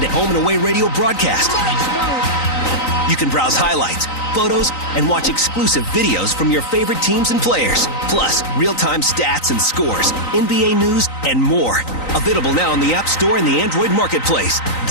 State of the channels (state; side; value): late; right; 3.9 ms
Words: to home and away radio broadcast. You can browse highlights, photos, and watch exclusive videos from your favorite teams and players. Plus, real-time stats and scores, NBA news, and more. Available now on the App Store and the Android Marketplace.